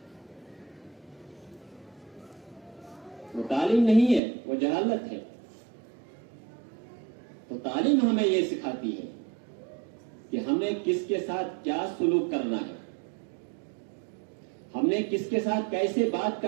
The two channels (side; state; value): left; drops out; at 4.2 s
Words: وہ تعلیم نہیں ہے، وہ جہالت ہے. تو تعلیم ہمیں یہ سکھاتی ہے کہ ہم نے کس کے ساتھ کیا سلوک کرنا ہے، ہم نے کس کے ساتھ کیسے بات